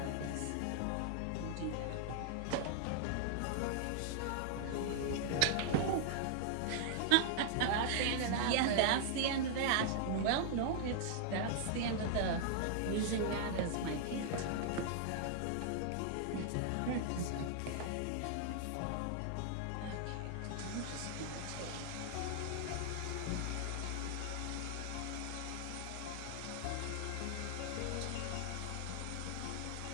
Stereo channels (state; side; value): different; both; correlation -0.01